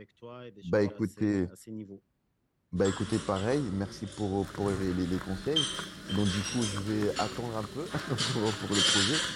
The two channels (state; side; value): identical; both; correlation 1.00